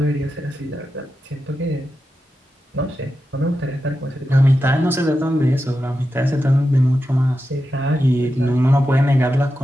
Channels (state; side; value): normal; both; correlation 0.90